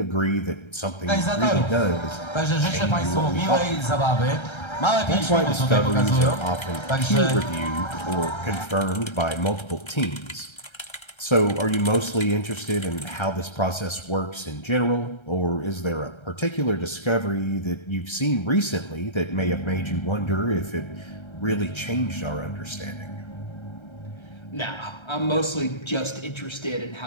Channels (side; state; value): right; late; 1.3 ms